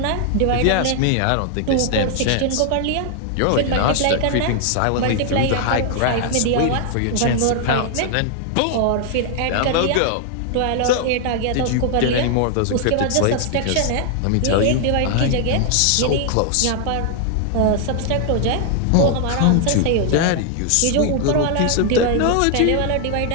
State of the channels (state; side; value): different; both; correlation 0.00